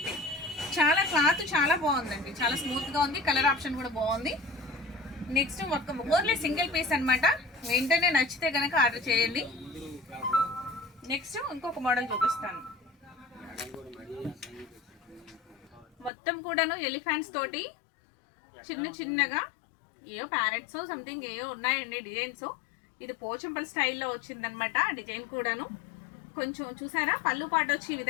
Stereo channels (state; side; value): drops out; right; at 16.1 s